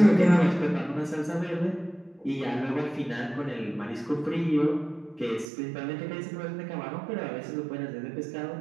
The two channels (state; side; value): drops out; left; at 5.5 s